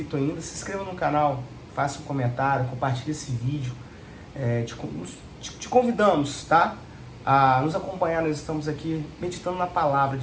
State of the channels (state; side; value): identical; both; correlation 1.00